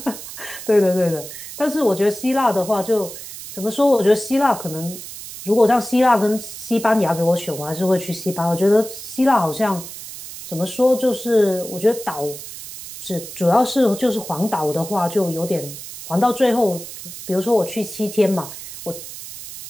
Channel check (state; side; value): noise; right; hiss, 12 dB below the sound